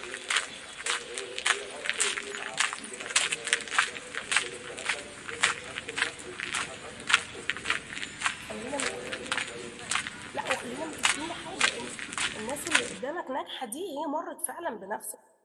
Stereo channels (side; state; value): both; identical; correlation 1.00